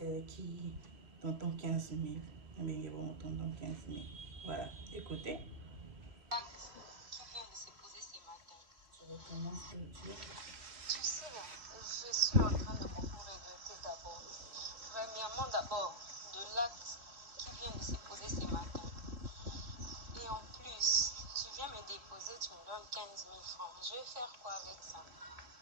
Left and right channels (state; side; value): late; left; 3.1 ms